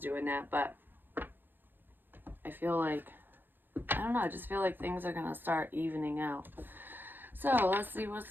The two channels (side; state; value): left; late; 0.095 ms